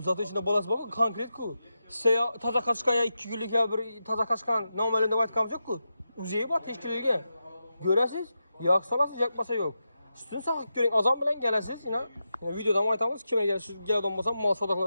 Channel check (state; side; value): inverted; both; correlation -0.89